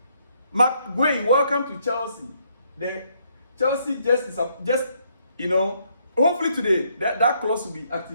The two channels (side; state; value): both; inverted; correlation -0.71